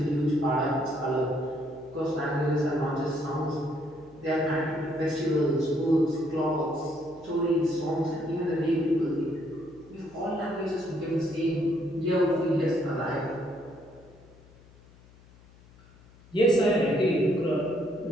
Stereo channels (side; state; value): left; noise; hum, 25 dB below the sound